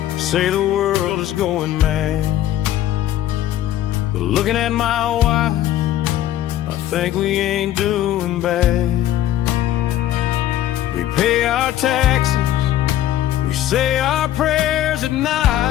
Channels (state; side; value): quieter; right; 12.6 dB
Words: say the world is going mad, but looking at my wife, I think we ain't doing bad. We pay our taxes We say our prayers at